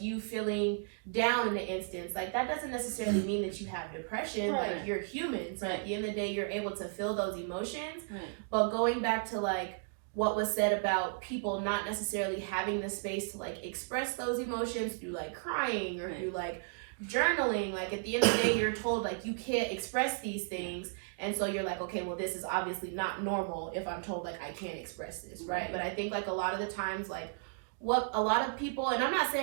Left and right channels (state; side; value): silent; left; digital silence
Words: you feeling down in an instance, like that doesn't necessarily mean that you have depression. Like you're human, so at the end of the day you're able to feel those emotions. But going back to like what was said about people not necessarily having the space to like express those emotions through like crying or through like journaling, like at the end of the day you're told like you can't express these things, and so you're like, okay, well this is obviously not normal if I'm told like I can't express this, right? But I think like a lot of the times like what a lot of people, and I'm not